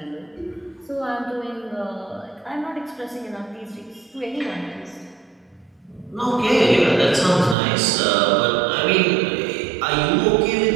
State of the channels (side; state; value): left; drops out; at 7.6 s